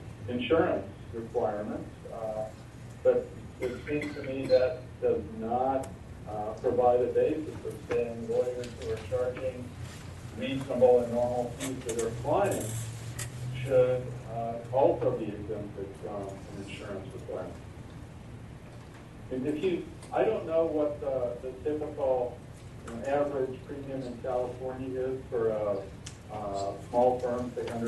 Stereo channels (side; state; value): both; identical; correlation 1.00